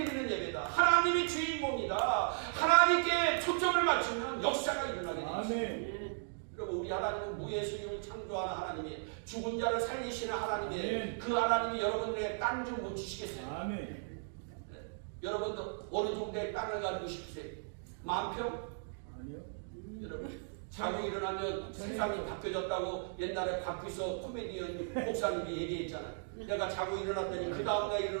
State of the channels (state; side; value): silent; left; digital silence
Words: 예배다. 하나님이 주인공이다. 하나님께 초점을 맞추면 역사가 일어나게 됩니다. 여러분 우리 하나님은 무예수님을 창조하는 하나님이에요. 죽은 자를 살리시는 하나님이에요. 아멘. 그 하나님이 여러분들에게 땅 좀 못 주시겠어요? 아멘. 네. 여러분도 어느 정도의 땅을 가지고 싶으세요? 10,000평? 아니요. 여러분 자고 일어나면 세상이 바뀌어졌다고 옛날에 박규서 코미디언 목사님이 얘기했잖아요. 내가 자고 일어났더니 그 다음날